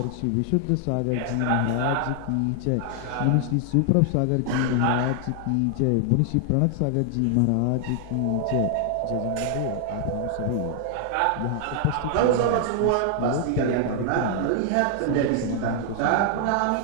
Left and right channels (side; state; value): both; different; correlation 0.00